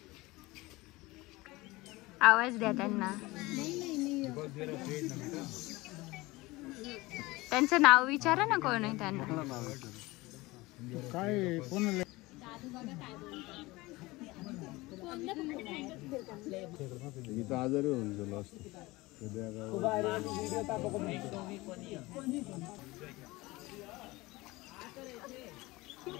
आवाज द्या त्यांना. त्यांचं नाव विचारा ना कोण आहे त्यांना. काय कोण मी तर आजारी होऊन गेलो असतो.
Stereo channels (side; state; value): right; quieter; 21.2 dB